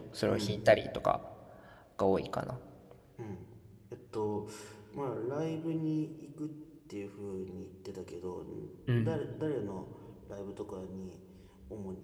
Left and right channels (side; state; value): both; identical; correlation 1.00